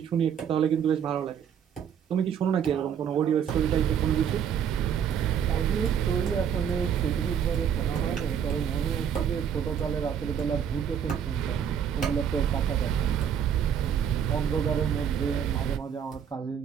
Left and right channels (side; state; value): left; quieter; 8.3 dB